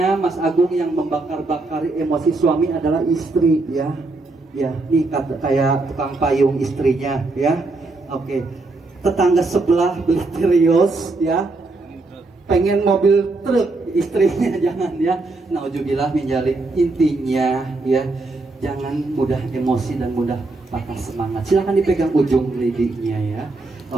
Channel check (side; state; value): left; quieter; 3.3 dB